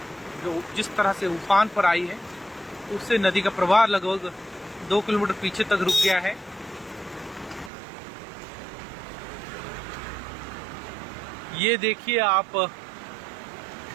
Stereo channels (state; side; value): drops out; left; at 7.7 s